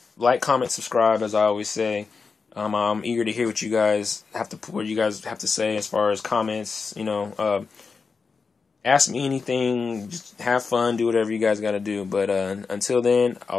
Like, comment, subscribe, as I always say. I'm eager to hear what you guys have to say as far as comments. Ask me anything. Just have fun. Do whatever you guys got to do. But until then,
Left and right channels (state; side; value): quieter; right; 4.9 dB